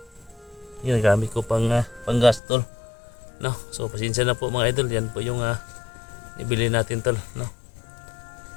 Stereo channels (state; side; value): drops out; right; at 2.4 s